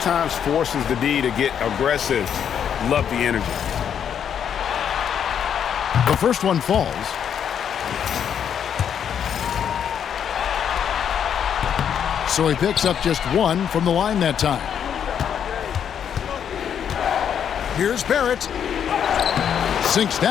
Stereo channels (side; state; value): right; quieter; 8.5 dB